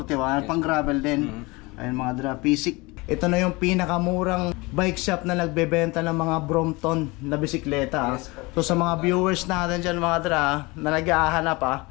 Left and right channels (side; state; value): right; quieter; 24.4 dB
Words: pang gravel din. Ayun mga dra, Pisik. Ito na yung pinakamurang bike shop na nagbebenta ng mga Brompton na bisikleta. So sa mga viewers natin dyan mga dra, na nag-ahanap